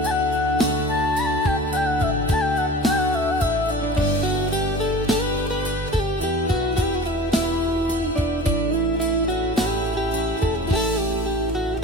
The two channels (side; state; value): both; normal; correlation 0.39